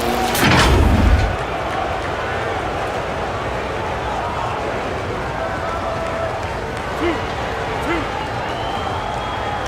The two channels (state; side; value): identical; both; correlation 1.00